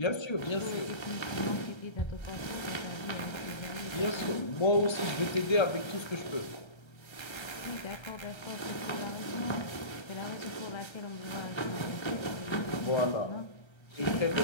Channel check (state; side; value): late; right; 1.3 ms